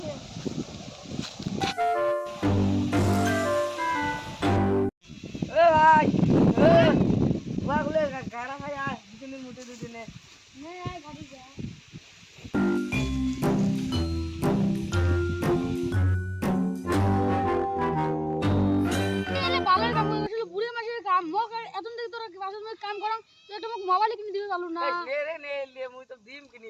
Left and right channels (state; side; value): identical; both; correlation 1.00